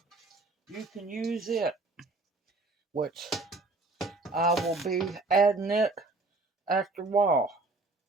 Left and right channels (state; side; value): quieter; left; 3.3 dB